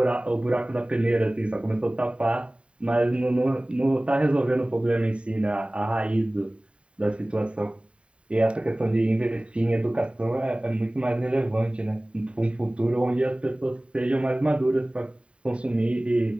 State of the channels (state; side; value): late; left; 0.058 ms